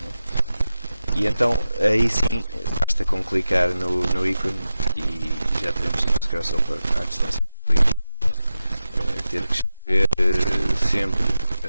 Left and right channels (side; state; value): both; inverted; correlation -0.92